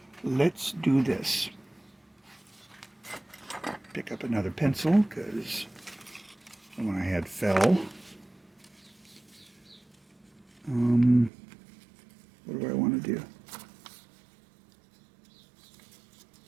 let's do this. Pick up another pencil because the one I had fell. What do I want to do?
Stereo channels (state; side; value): drops out; left; at 11.3 s